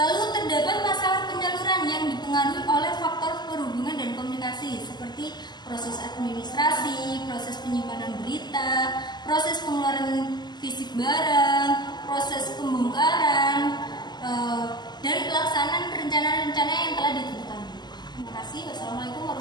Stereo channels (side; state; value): right; late; 0.21 ms